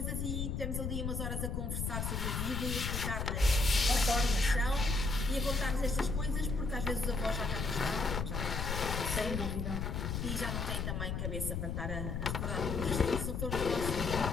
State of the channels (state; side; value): noise; left; rumble, 1 dB below the sound